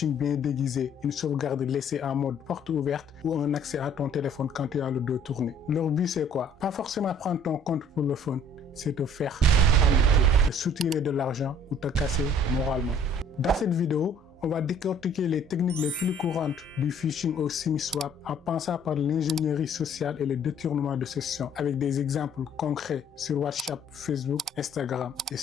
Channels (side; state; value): both; normal; correlation 0.56